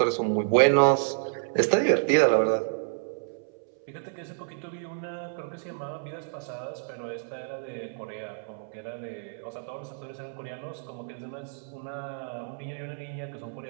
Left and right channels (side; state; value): left; silent; 58 dB below the other